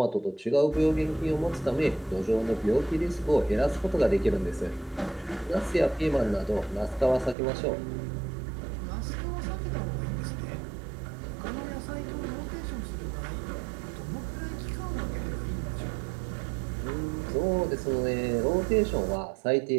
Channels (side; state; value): left; drops out; at 7.4 s